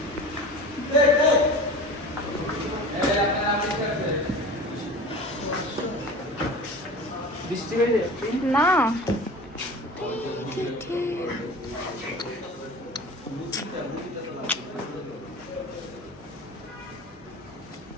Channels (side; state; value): both; normal; correlation 0.36